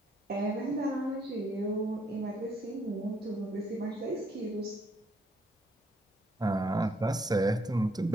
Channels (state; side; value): normal; both; correlation 0.70